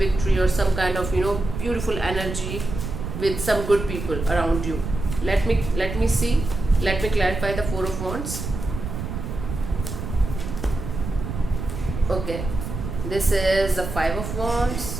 or some kind of beautiful energy with some good people around you. Let me see. Let me clarify the Four of Wands. Okay, this is the Five of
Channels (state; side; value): noise; right; rumble, 6 dB below the sound